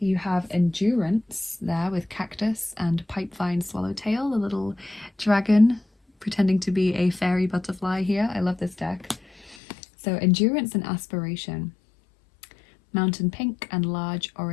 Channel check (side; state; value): right; drops out; at 9.6 s